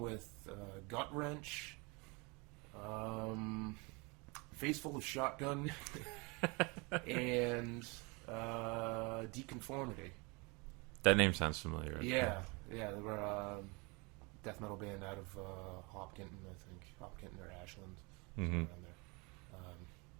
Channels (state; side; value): quieter; left; 28.5 dB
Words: Gut Wrench, Face Full of Shotgun, and Deconformity. That name sounds familiar. Yeah, they were a death metal band out of Hopkinton, I think. Hopkinton or Ashland, somewhere around there.